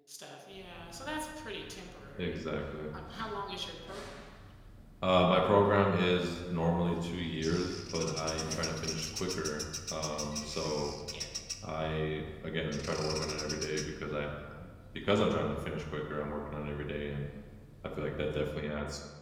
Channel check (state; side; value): identical; both; correlation 1.00